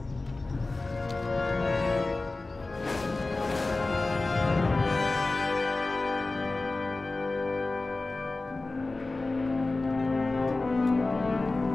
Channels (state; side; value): quieter; right; 3.3 dB